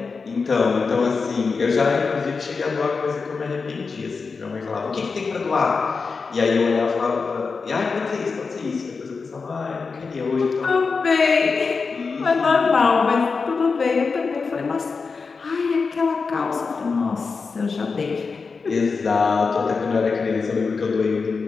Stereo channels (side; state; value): right; quieter; 4.8 dB